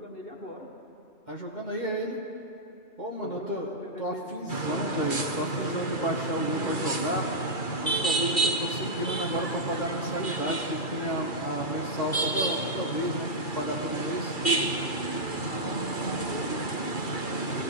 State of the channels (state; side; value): late; right; 2.3 ms